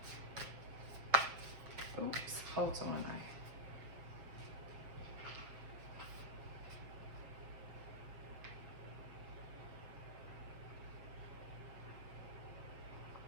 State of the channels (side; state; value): left; late; 7.1 ms